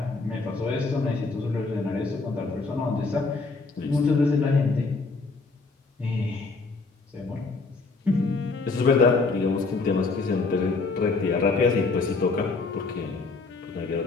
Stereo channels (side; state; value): right; quieter; 3.9 dB